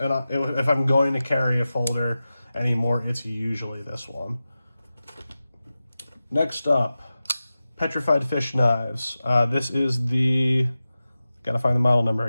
if I'm going to carry a folder anymore, it's usually this one. Next up, Petrified fish knives. This is the Gotta find the model number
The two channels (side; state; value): both; inverted; correlation -0.94